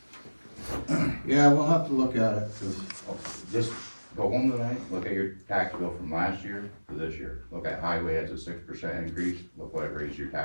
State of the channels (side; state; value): both; inverted; correlation -1.00